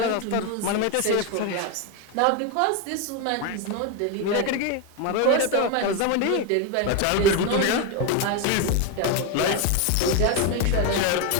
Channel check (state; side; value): different; both; correlation 0.02